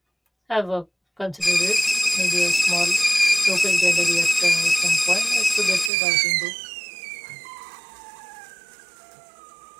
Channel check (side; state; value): left; drops out; at 5.9 s